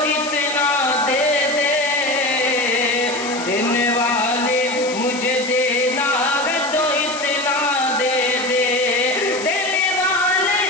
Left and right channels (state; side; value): noise; left; hiss, 10 dB below the sound